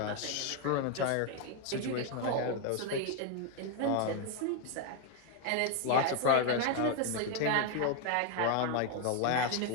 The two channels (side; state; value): both; different; correlation 0.01